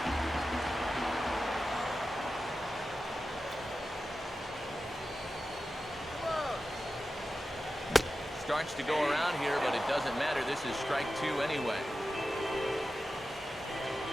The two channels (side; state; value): both; normal; correlation 0.93